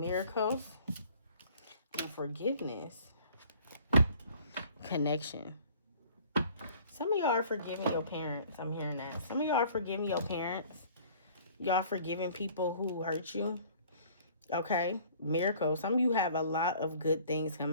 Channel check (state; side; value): inverted; both; correlation -0.53